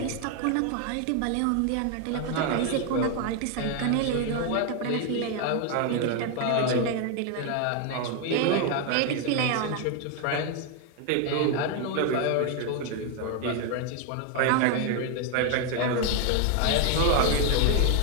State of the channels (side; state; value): both; different; correlation 0.01